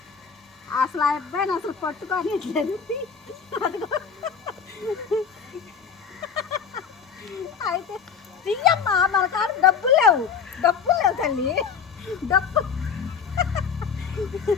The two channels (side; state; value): right; quieter; 6.5 dB